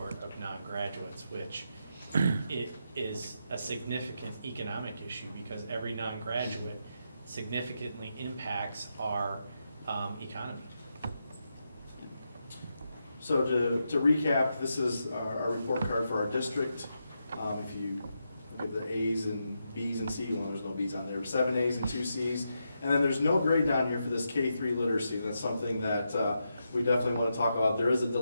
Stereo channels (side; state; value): both; inverted; correlation -0.85